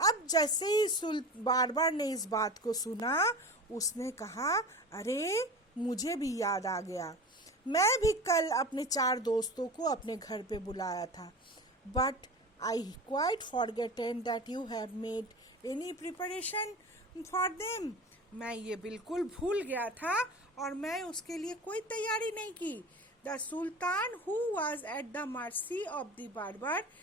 जैसे ही बार्बर ने इस बात को सुना, उसने कहा, अरे मुझे भी याद आ गया, मैं भी कल अपने 4 दोस्तों को अपने घर पे बुलाया था। But I quite forgotten that you have made any preparation for them. मैं ये बिल्कुल भूल गया था और मैं उसके लिए कोई तैयारी नहीं की। The sultan who was at the mercy of the barber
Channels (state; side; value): normal; both; correlation 0.33